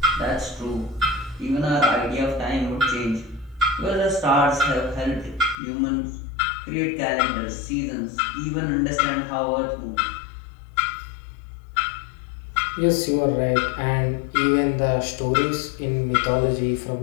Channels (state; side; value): drops out; right; at 5.6 s